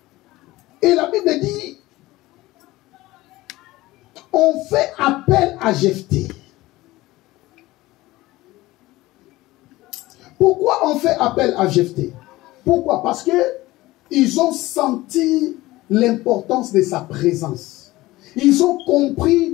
Et la Bible dit, on fait appel à Jephthé. Pourquoi on fait appel à Jephthé? Pourquoi? Parce que ils ont senti l'importance de sa présence. Ils ont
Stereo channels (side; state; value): right; quieter; 18.4 dB